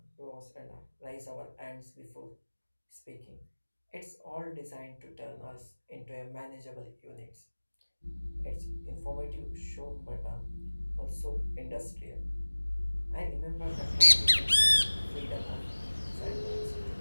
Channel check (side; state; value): both; inverted; correlation -1.00